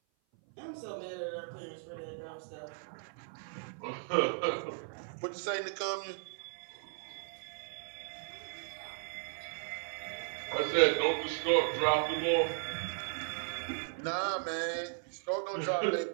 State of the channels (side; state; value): left; silent; 54 dB below the other